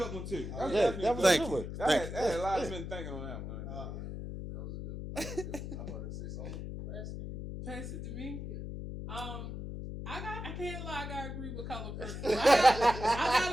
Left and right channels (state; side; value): noise; left; hum, 7 dB below the sound